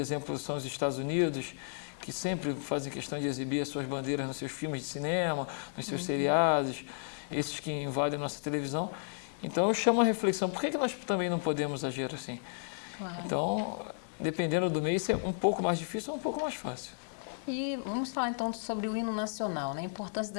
são os Estados Unidos, que sempre fazem questão de exibir as suas bandeiras nos seus filmes de cinema, nos seus seriados, esses que invadem a nossa televisão. Então eu chamo a reflexão, por que nós também não podemos agir assim? Claro. Então, dependendo do meio, isso é um pouco mais difícil ou um pouco mais fácil. E vamos falar então sobre o hino nacional, né? A importância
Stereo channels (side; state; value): right; silent; digital silence